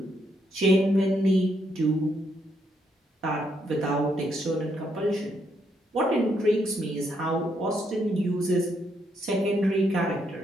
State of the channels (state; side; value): normal; both; correlation 0.76